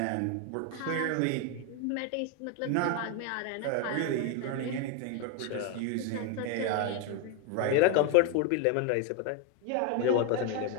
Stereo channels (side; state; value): both; different; correlation 0.01